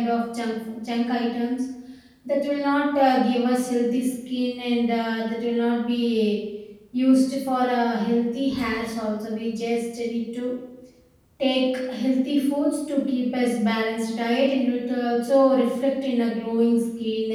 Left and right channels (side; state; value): both; identical; correlation 1.00